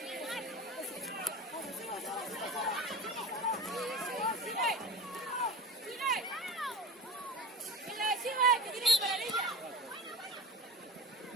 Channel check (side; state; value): both; normal; correlation 0.33